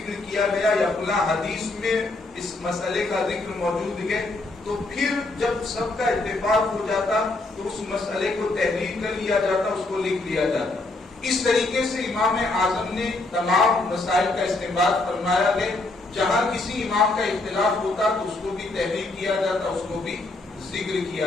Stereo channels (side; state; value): right; quieter; 3.1 dB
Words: کیا گیا یا فلاں حدیث میں اس مسئلے کا ذکر موجود ہے, تو پھر جب سب کا اتفاق ہو جاتا تو اس مسئلے کو تحریر کر لیا جاتا, اس کو لکھ لیا جاتا. اس طریقے سے امام اعظم نے تمام مسائل کا استنباط فرمایا ہے. جہاں کسی امام کا اختلاف ہوتا تو اس کو بھی تحریر کیا جاتا, اس کو بھی ذکر